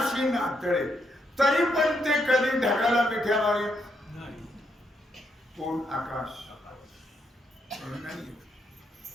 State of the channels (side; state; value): both; normal; correlation 0.78